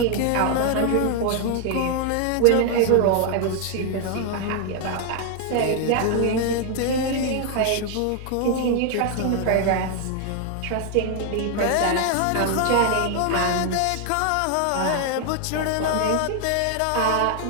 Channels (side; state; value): both; different; correlation 0.00